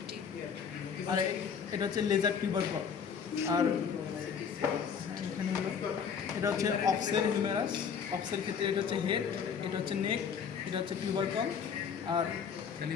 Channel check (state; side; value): quieter; right; 6.9 dB